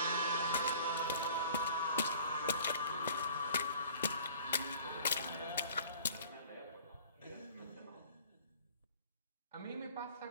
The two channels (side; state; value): both; inverted; correlation -0.49